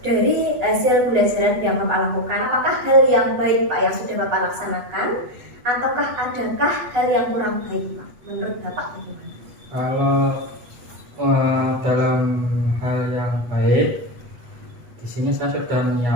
dari hasil pembelajaran yang Bapak lakukan, apakah hal yang baik Pak yang sudah Bapak laksanakan, ataukah adakah hal yang kurang baik Pak? Menurut Bapak bagaimana? Kalau dalam hal yang baik, di sini saya sudah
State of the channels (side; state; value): left; late; 8.2 ms